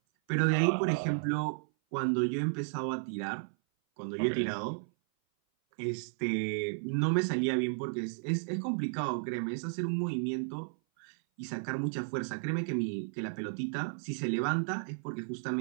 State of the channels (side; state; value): left; silent; 56 dB below the other